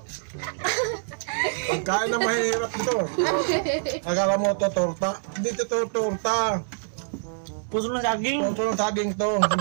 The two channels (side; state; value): left; silent; digital silence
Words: Pagkain na mahirap ito. Akala mo ito torta? Hindi ito torta. Puso ng saging. Puso ng saging to.